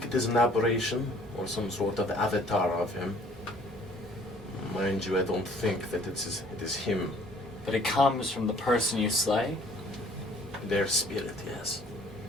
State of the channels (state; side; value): normal; both; correlation 0.56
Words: it is an aberration or some sort of avatar of him. Mind you, I don't think that it is him. But it comes from the person you slay, Their spirit, yes.